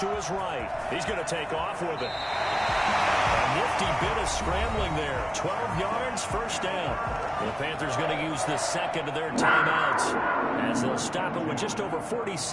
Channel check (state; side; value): identical; both; correlation 1.00